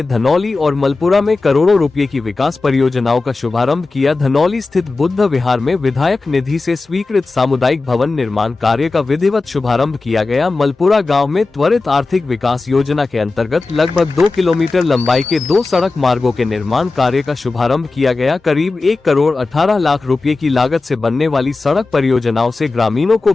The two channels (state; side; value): quieter; right; 3.7 dB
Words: धनौली और मलपुरा में करोड़ों रुपए की विकास परियोजनाओं का शुभारंभ किया। धनौली स्थित बुद्ध विहार में विधायक निधि से स्वीकृत सामुदायिक भवन निर्माण कार्य का विधिवत शुभारंभ किया गया। मलपुरा गाँव में त्वरित आर्थिक विकास योजना के अंतर्गत लगभग 2 किलोमीटर लंबाई के 2 सड़क मार्गों के निर्माण कार्य का शुभारंभ किया गया। करीब 1 करोड़ 18 लाख रुपए की लागत से बनने वाली सड़क परियोजनाओं से ग्रामीणों को